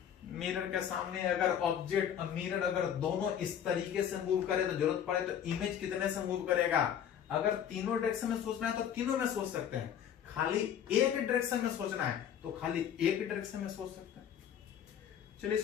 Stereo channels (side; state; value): right; quieter; 9.2 dB